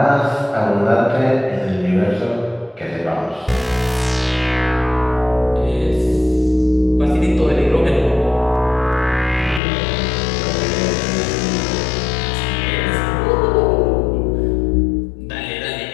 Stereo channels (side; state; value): right; drops out; at 9.6 s